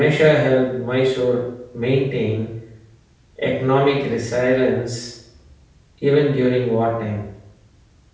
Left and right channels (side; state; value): both; identical; correlation 1.00